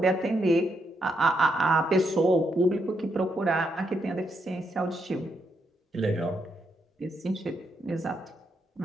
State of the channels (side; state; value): both; normal; correlation 0.79